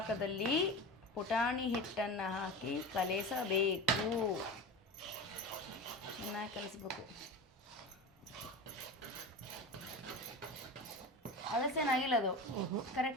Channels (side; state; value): both; normal; correlation 0.28